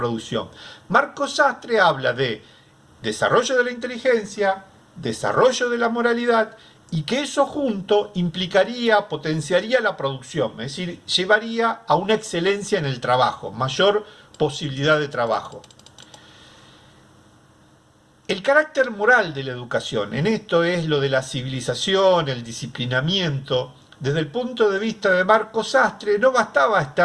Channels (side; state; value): both; identical; correlation 1.00